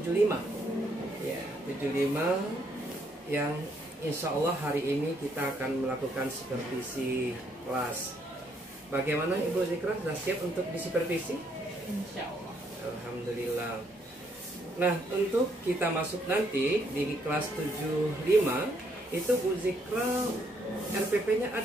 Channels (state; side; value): normal; both; correlation 0.71